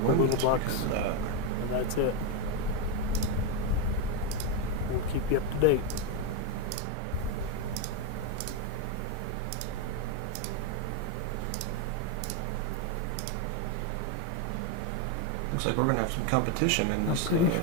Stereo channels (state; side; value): different; both; correlation 0.02